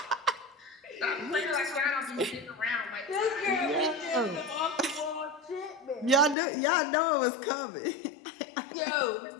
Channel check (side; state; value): right; drops out; at 6.4 s